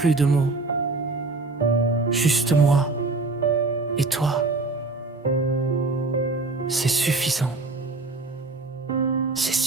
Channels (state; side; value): quieter; left; 3.5 dB